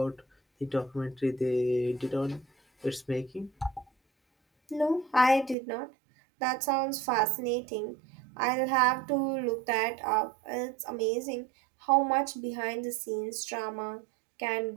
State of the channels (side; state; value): left; drops out; at 5.6 s